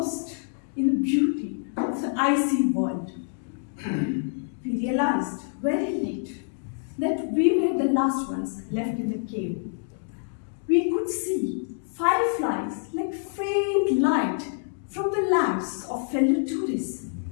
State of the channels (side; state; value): right; silent; 61 dB below the other